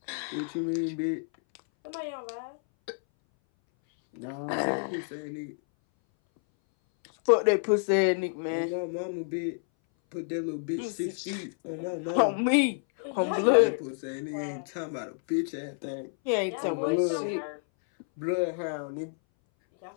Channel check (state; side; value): silent; right; 58 dB below the other